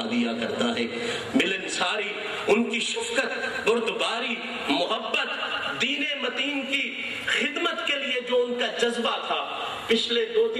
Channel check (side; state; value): both; identical; correlation 1.00